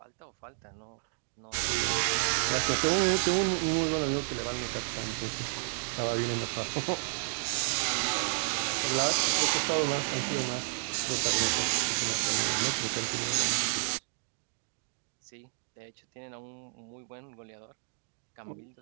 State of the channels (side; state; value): left; silent; digital silence